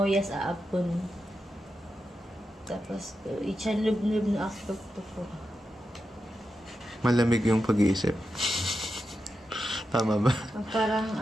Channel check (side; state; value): both; normal; correlation 0.88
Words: aapon. Tapos, ichanlub-nub na akpag ko. Malamig yung pag-iisip. Tama ba? Parang